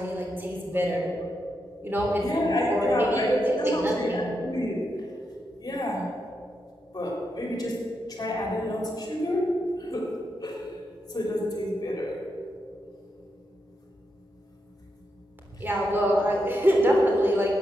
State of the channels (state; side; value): normal; both; correlation 0.84